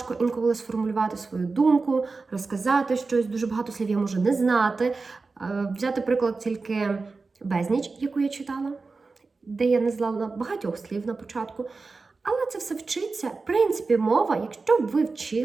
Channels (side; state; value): left; quieter; 4.0 dB